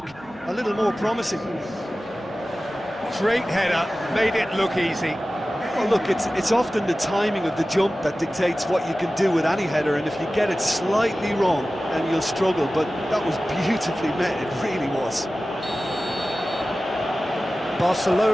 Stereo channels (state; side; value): normal; both; correlation 0.96